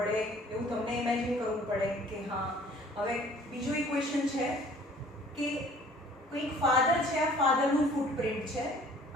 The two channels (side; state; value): both; normal; correlation 0.53